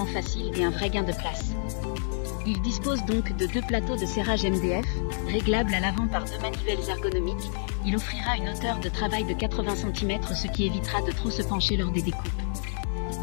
facile et un vrai gain de place. Il dispose donc de 2 plateaux de serrage MDF, réglables à l'avant par 2 manivelles ergonomiques. Il offrira une hauteur de travail de 80 cm, ce qui évitera de trop se pencher lors des découpes.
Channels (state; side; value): silent; right; 59 dB below the other